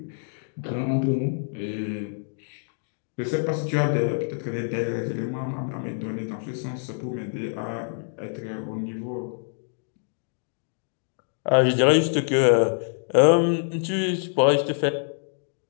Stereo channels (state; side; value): silent; right; digital silence